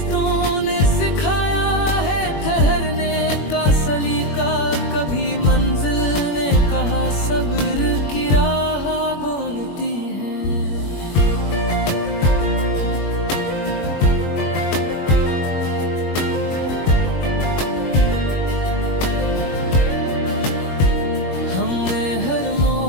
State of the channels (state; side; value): late; right; 21 ms